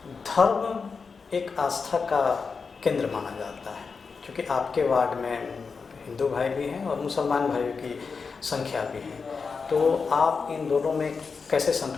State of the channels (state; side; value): quieter; right; 5.1 dB